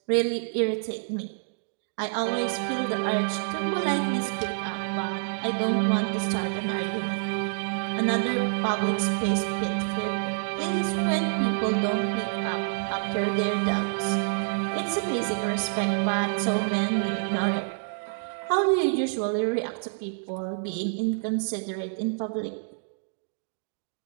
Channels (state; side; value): silent; left; digital silence